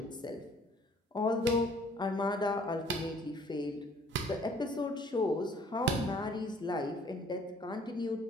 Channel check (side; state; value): both; normal; correlation 0.58